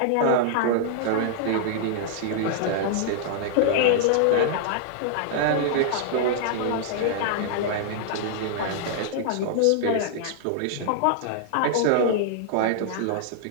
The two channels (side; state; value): both; different; correlation -0.01